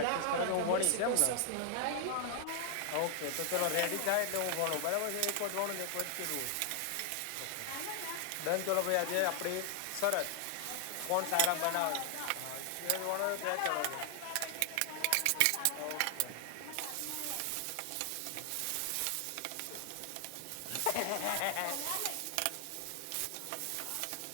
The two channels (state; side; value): different; both; correlation 0.00